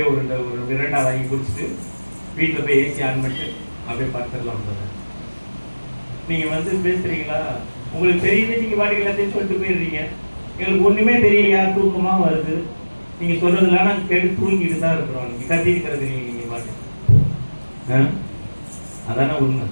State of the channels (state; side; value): inverted; both; correlation -1.00